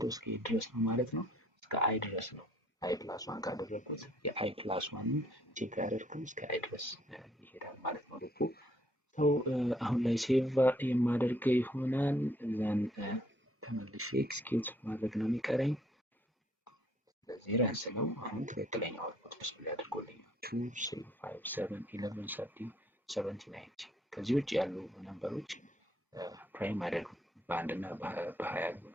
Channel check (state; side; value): normal; both; correlation 0.64